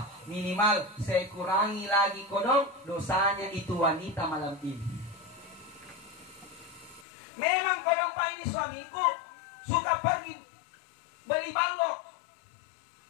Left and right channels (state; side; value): drops out; right; at 7.1 s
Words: minimal saya kurangi lagi kodong dosanya itu wanita malam ini. Memang kodong pak ini suamiku suka pergi beli balok.